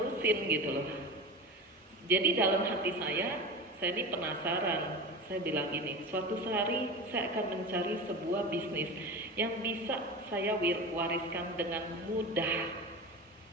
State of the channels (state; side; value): normal; both; correlation 0.28